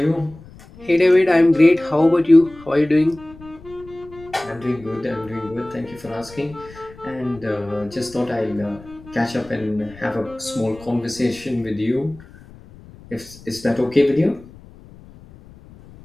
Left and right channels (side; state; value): left; noise; rumble, 21 dB below the sound